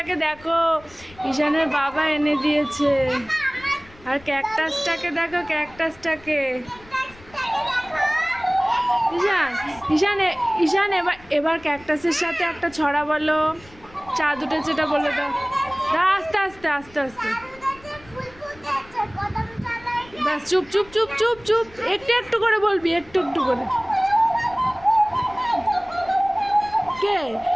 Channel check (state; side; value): noise; left; rumble, 23 dB below the sound